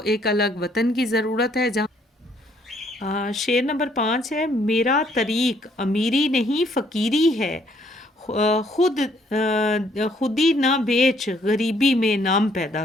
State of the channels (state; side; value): normal; both; correlation 0.66